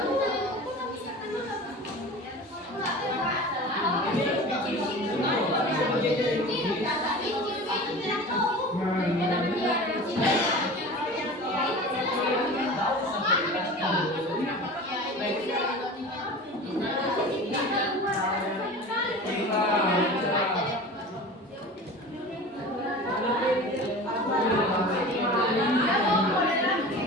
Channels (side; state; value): both; normal; correlation 0.36